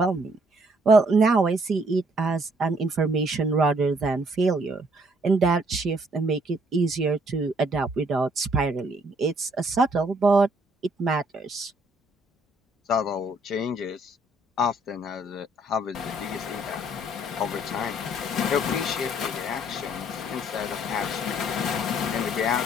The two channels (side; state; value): both; normal; correlation 0.66